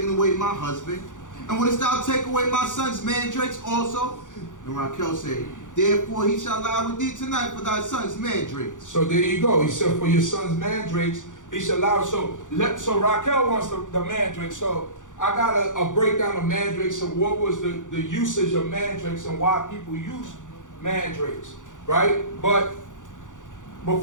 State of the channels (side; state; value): right; late; 0.87 ms